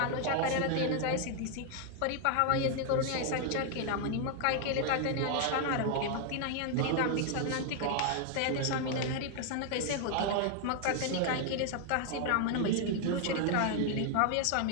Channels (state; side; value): different; both; correlation 0.00